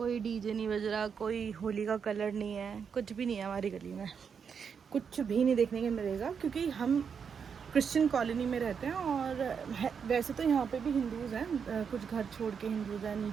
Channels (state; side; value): quieter; left; 6.6 dB